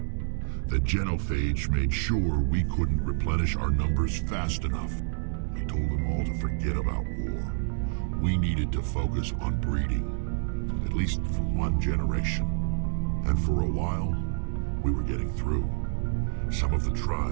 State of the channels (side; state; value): left; silent; digital silence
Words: the genophage made sure we couldn't replenish our numbers fast enough. I told them all to forget about war. We needed to focus on breeding, at least for one generation. And for a while, we were getting through. Some of the